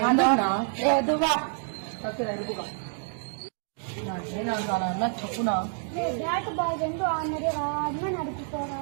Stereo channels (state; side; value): silent; left; 58 dB below the other